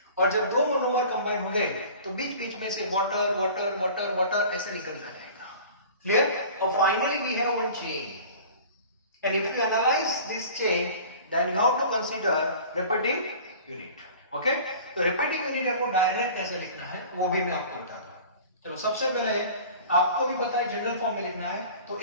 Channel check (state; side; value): inverted; both; correlation -0.43